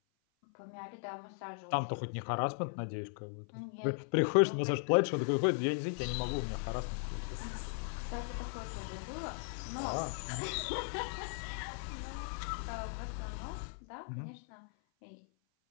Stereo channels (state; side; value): silent; right; 53 dB below the other